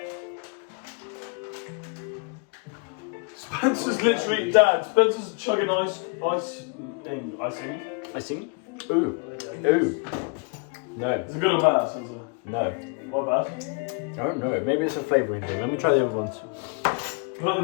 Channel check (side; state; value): right; quieter; 35.2 dB